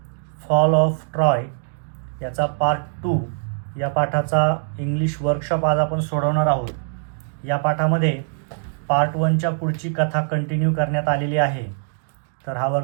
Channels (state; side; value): silent; left; digital silence